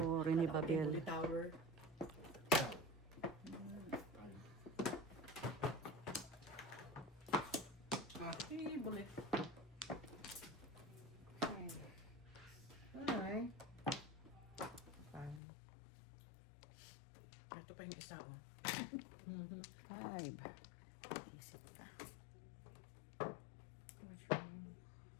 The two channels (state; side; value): drops out; right; at 15.4 s